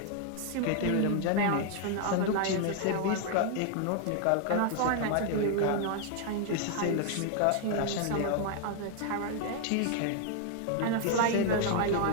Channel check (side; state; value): both; different; correlation 0.00